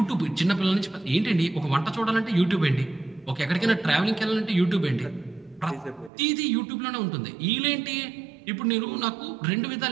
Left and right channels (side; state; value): left; drops out; at 6.1 s